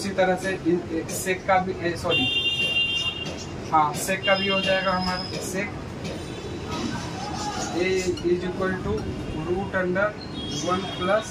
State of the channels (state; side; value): identical; both; correlation 1.00